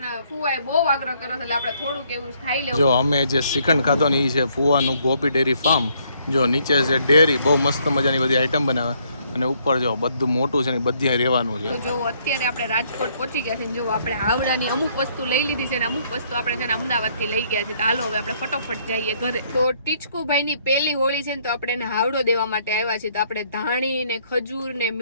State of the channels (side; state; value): both; inverted; correlation -0.68